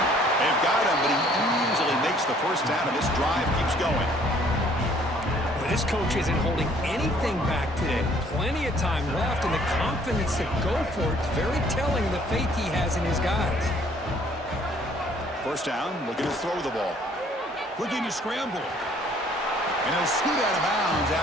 They've got him, but he easily makes the first down, and this drive keeps going. Well, this coach isn't holding anything back today. Plenty of time left, and the confidence to go for it is very telling of the faith he has in his guys. First down, looking to throw the ball. Looking to scramble. And he'll scoot out of bounds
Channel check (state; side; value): normal; both; correlation 0.60